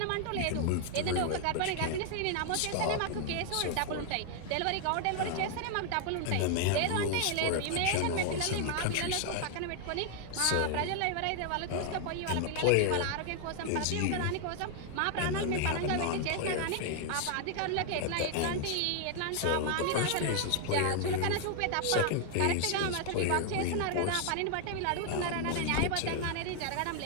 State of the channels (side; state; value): both; different; correlation 0.00